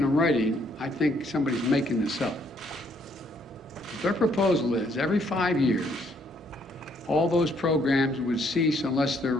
writing, I think somebody's making this up. But their proposal is every 5 years, all those programs would cease unless they're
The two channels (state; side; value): normal; both; correlation 0.68